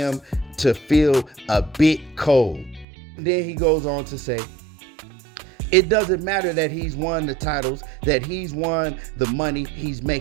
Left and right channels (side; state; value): left; drops out; at 2.9 s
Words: to feel a bit cold. Then he goes on to say, it doesn't matter that he's won the titles, that he's won the money he's